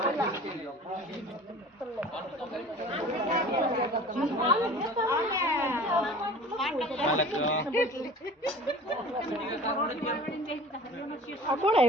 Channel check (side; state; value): both; normal; correlation 0.42